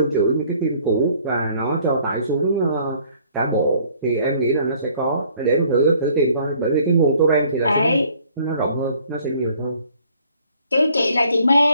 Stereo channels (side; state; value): both; inverted; correlation -0.59